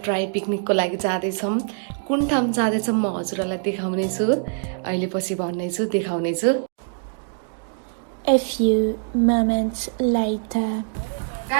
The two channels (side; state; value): left; silent; digital silence